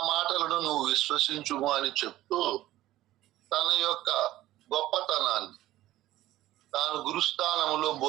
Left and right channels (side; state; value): left; quieter; 15.2 dB